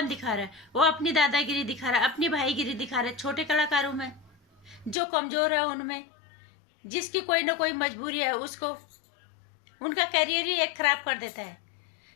दिखा रहा है, वो अपनी दादागिरी दिखा रहा है, अपनी भाईगिरी दिखा रहा है छोटे कलाकारों में। जो कमजोर है उनमें, जिसकी कोई ना कोई मजबूरी है, उसको उनका करियर ही एक खराब कर देता है।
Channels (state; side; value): drops out; right; at 5.0 s